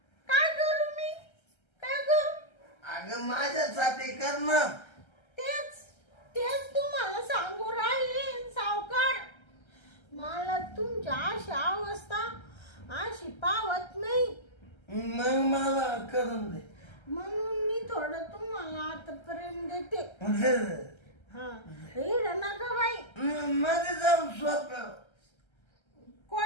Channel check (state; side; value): late; right; 1.3 ms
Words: मी काय करू अगं माझ्यासाठी कर ना. तेच तुम्हाला सांगू राहिले सावकार मला तुमच्या अशी अवस्था अशी पावत नाही. मग मला करून दे. म्हणून मी थोडं तुम्हाला आता प्रेम देते. हा इड नका बाई मध्ये जाऊन सोप्या